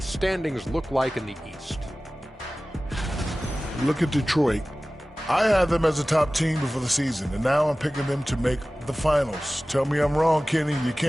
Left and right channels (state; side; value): normal; both; correlation 0.97